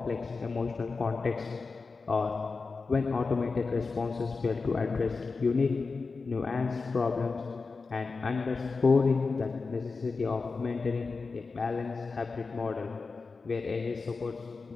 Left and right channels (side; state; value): right; quieter; 4.3 dB